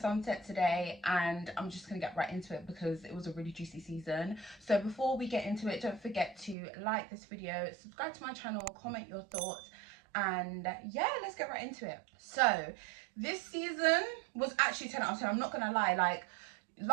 today, and I'm just going to get right into it because it was a really juicy season. So before we get into it, don't forget to like this video, subscribe to my channel, comment your thoughts, and yeah, let's get right into it. So this season was actually 10 out of 10. I'm not going to lie, like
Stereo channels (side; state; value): left; drops out; at 6.6 s